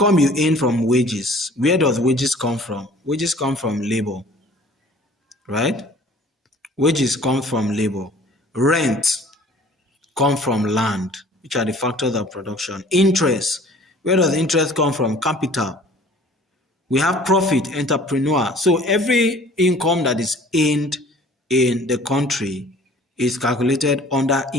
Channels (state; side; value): normal; both; correlation 0.50